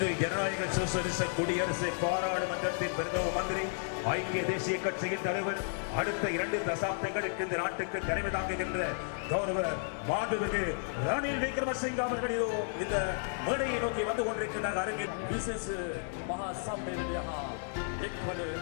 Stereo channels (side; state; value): right; silent; digital silence